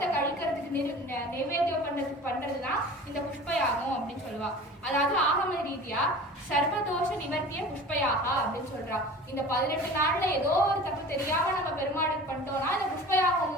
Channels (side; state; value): both; normal; correlation 0.40